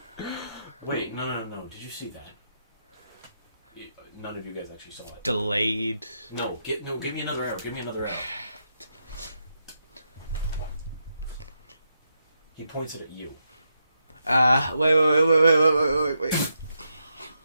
Wait, no. Did you see that? None of you guys actually saw it. Delayed. No, give me another arrow. Give me another arrow. He points it at you. Wait.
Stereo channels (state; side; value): inverted; both; correlation -0.83